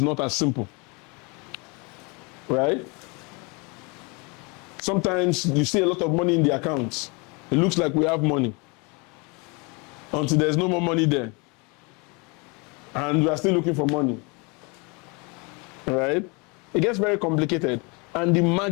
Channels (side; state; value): right; quieter; 30.0 dB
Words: not as simple, right? Sometimes you see a lot of money in the accounts. It looks like we have money until there's no more money there. And we are still looking for money, right? It gets very complicated and the